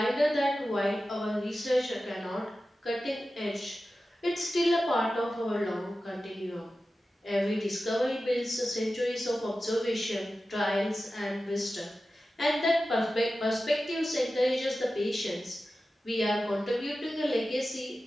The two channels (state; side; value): normal; both; correlation 0.94